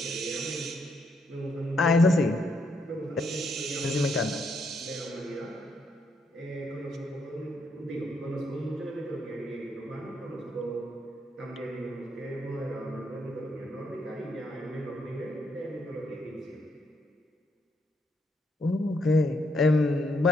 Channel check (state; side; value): normal; both; correlation 0.75